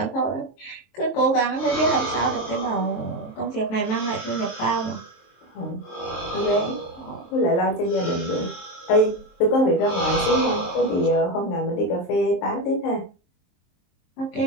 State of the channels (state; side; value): late; right; 23 ms